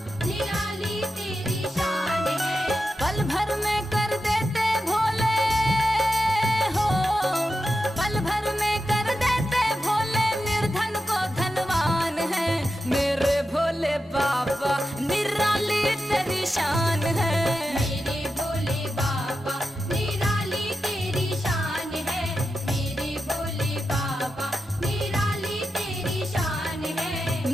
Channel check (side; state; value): both; normal; correlation 0.90